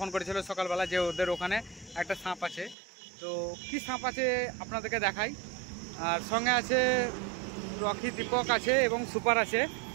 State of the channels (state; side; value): drops out; left; at 2.8 s